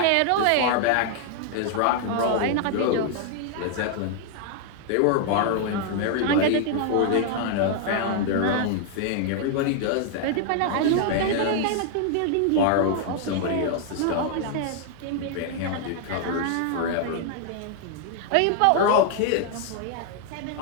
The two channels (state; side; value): different; both; correlation 0.00